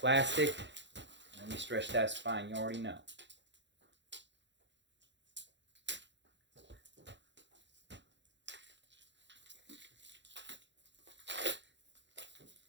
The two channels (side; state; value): left; late; 0.52 ms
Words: Let me stretch that spine. You already know.